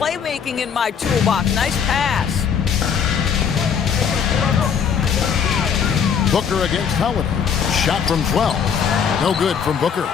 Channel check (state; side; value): quieter; right; 7.2 dB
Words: in my toolbox. Nice pass. Booker against Holiday. Shot from 12. No good from Booker.